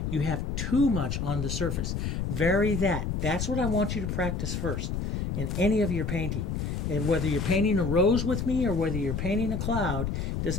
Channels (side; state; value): left; noise; rumble, 2 dB below the sound